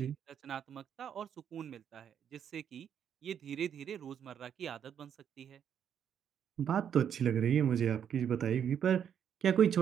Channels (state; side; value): quieter; left; 8.6 dB